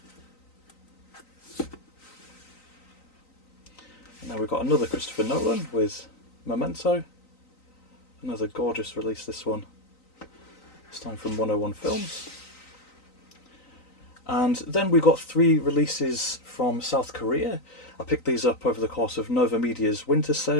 Now we've got another Christopher Nolan with Memento. Another gorgeous release, this one. This time from 101 Films. And then we've got 3 releases from South Korea. I picked these up over the course of Nova Media's winter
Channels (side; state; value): right; late; 3.9 ms